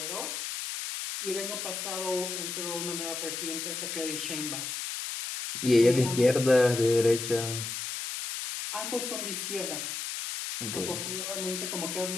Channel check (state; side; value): noise; left; hiss, 5 dB below the sound